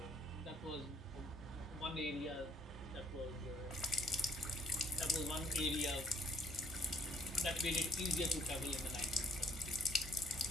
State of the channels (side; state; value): both; normal; correlation 0.62